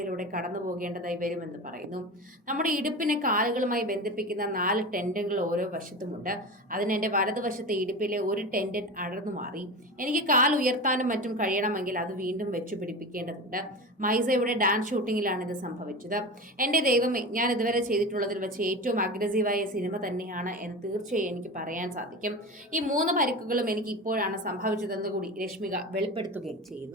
കടന്നു പോകേണ്ടതായി വരുമെന്ന് പറയുന്നു. നമ്മുടെ ഇടുപ്പിനെ കാലുകളുമായി ബന്ധിപ്പിക്കുന്ന 4 ടെൻഡനുകൾ ഓരോ വശത്തുമുണ്ട്. അതിന് എൻ്റെ വലതുവശത്തെ ഇടുപ്പിലെ ഒരു ടെൻഡൻ അടർന്നു മാറി. എനിക്ക് കാൽ ഉയർത്താനും മറ്റും കഴിയണമെങ്കിൽ അത് വീണ്ടും വെച്ചു പിടിപ്പിക്കേണ്ടതുണ്ട്. മൈസയുടെ ഡാൻസ് ഷൂട്ടിങ്ങിലാണ് ഇത് സംഭവിച്ചത്. എൻ്റെ ദൈവമേ, ഞാൻ ഇതുവരെ ചെയ്തിട്ടുള്ളതിൽ വെച്ച് ഏറ്റവും അഗ്രസീവായ സിനിമ തന്നെയാണ് എന്ന് തീർച്ചയായും എനിക്ക് പറയാൻ സാധിക്കും. ഈ 3 പരിക്കുകളും എനിക്ക് ഇപ്പോഴാണ് സംഭവിച്ചതെന്ന് കൂടി രശ്മിക വെളിപ്പെടുത്തുകയും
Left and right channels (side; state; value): both; normal; correlation 0.28